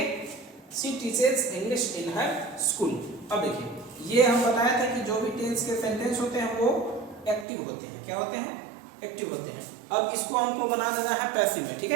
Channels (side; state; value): left; drops out; at 7.5 s